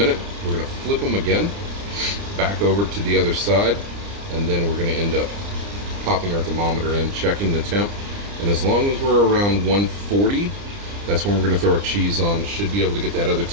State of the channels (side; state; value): left; late; 30 ms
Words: we're going to flip them again, back over to the other side, and then we're going to end up popping our thermometer in, checking the temp. And as long as we're around 140, that's when we're going to throw our cheese on. Should be able to get that other